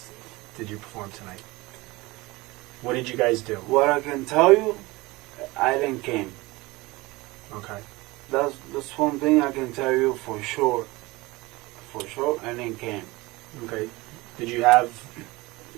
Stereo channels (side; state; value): left; quieter; 21.9 dB